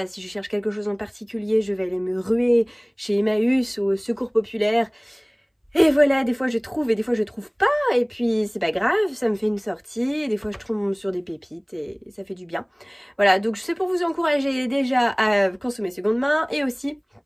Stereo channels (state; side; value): identical; both; correlation 1.00